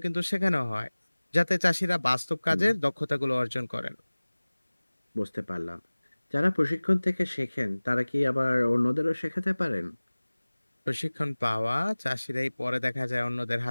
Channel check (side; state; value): both; inverted; correlation -1.00